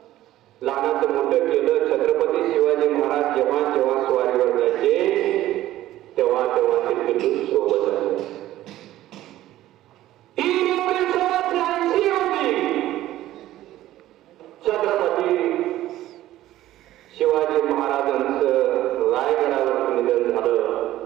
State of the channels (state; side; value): quieter; left; 14.5 dB